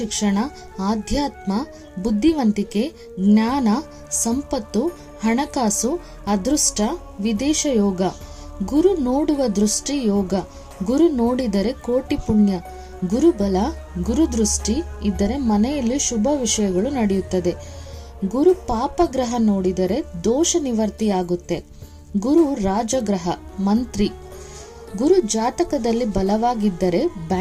ಆಧ್ಯಾತ್ಮ, ಬುದ್ಧಿವಂತಿಕೆ, ಜ್ಞಾನ, ಸಂಪತ್ತು, ಹಣಕಾಸು, ಅದೃಷ್ಟ, ವಿದೇಶ ಯೋಗ. ಗುರು ನೋಡುವ ದೃಷ್ಟಿ ಯೋಗ. ಗುರು ನೋಡಿದರೆ ಕೋಟಿ ಪುಣ್ಯ. ಗುರುಬಲ, ಗುರುದೃಷ್ಟಿ ಇದ್ದರೆ ಮನೆಯಲ್ಲಿ ಶುಭ ವಿಷಯಗಳು ನಡೆಯುತ್ತದೆ. ಗುರು ಪಾಪಗ್ರಹ ನೋಡಿದರೆ ದೋಷ ನಿವರ್ತಿಯಾಗುತ್ತೆ. ಗುರು ರಾಜಗ್ರಹ, ಮಂತ್ರಿ. ಗುರು ಜಾತಕದಲ್ಲಿ ಬಲವಾಗಿದ್ದರೆ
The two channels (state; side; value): identical; both; correlation 1.00